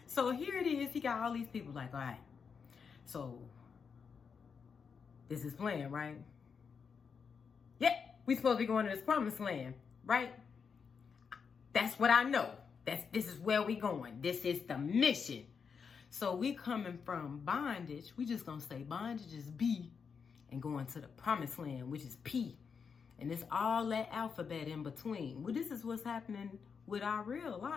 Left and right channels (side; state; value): right; quieter; 6.0 dB